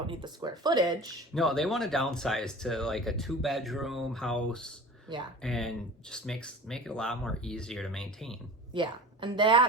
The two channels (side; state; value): both; normal; correlation 0.38